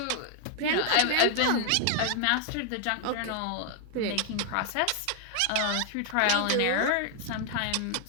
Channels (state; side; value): different; both; correlation 0.00